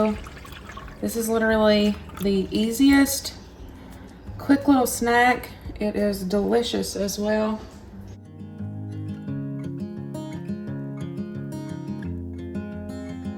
This is literally the easiest, quick little snack. It is delicious as well.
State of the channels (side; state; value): both; identical; correlation 1.00